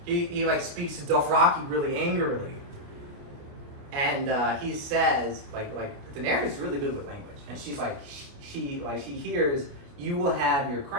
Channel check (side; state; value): left; late; 29 ms